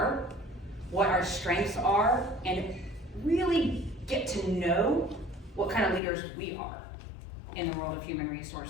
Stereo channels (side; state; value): right; drops out; at 6.0 s